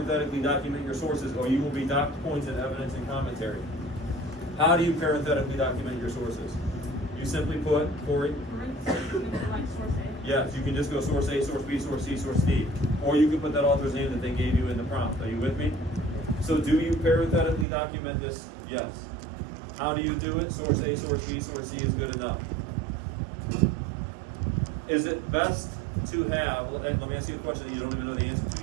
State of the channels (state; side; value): drops out; left; at 17.7 s